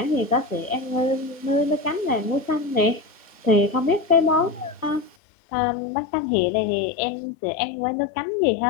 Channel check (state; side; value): drops out; right; at 5.2 s